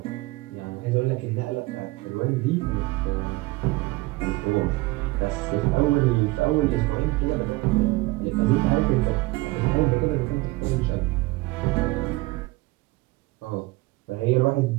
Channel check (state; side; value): quieter; left; 21.4 dB